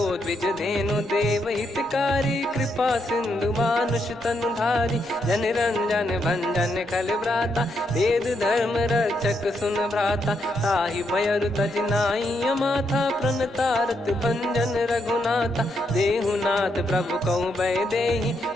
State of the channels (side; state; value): both; normal; correlation 0.79